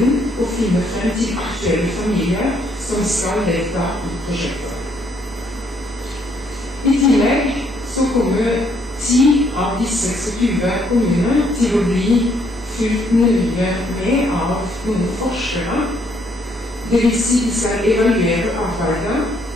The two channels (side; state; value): both; normal; correlation 0.69